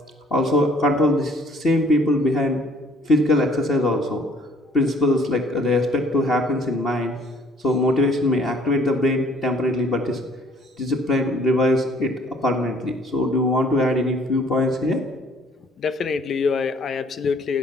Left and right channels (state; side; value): normal; both; correlation 0.58